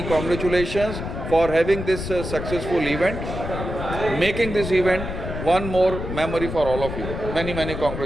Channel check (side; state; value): left; noise; rumble, 6 dB below the sound